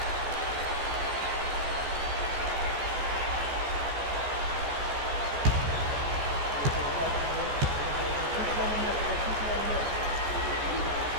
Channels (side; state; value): left; late; 14 ms